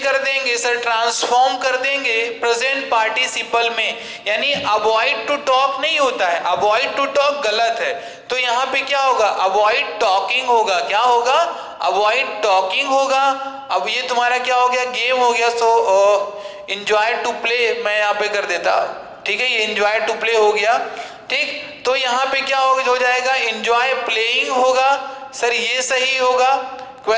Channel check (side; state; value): both; identical; correlation 1.00